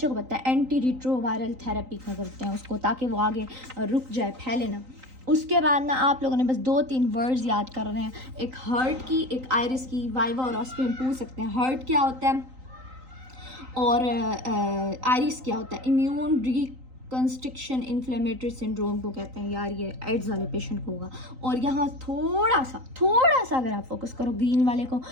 को पता है, एंटी रिट्रोवायरल थेरेपी का करते हैं उसको, ताकि वो आगे रुक जाए, फैले ना। उसके बाद ना आप लोगों ने बस 2-3 वर्ड्स याद कर रहे हैं, एक हर्ट की, एक आयरिस की, वाइवा और ऑस्पी में पूछ सकते हैं हर्ट क्या होता है और आयरिस क्या होता है। इम्यून रिकंस्ट्रक्शन इन्फ्लेमेटरी सिंड्रोम को कहते हैं यार, ये एड्स वाले पेशेंट को होगा। और यहाँ थोड़ा सा अगर आप फोकस करो ग्रीन वाले को,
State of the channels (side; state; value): left; late; 3.9 ms